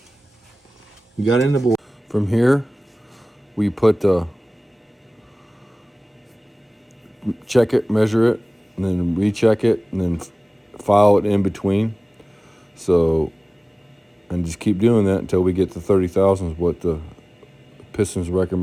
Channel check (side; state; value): both; normal; correlation 0.98